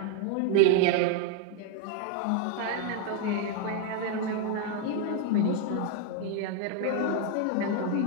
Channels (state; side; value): different; both; correlation 0.01